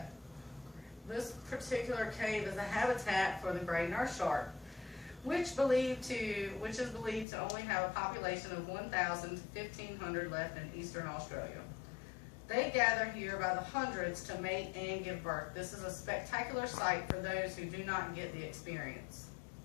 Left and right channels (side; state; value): right; drops out; at 7.2 s